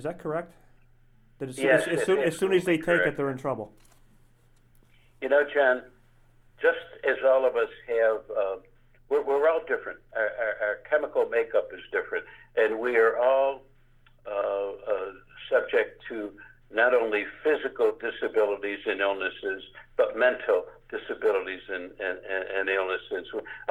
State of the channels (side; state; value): both; identical; correlation 1.00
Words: that correct? That as soon as they take it, they're in trouble. John, just as all of us have, we're all different. Our chemical makeup is different, and we are all subject to not only physical disabilities and illnesses, but mental disabilities and illnesses.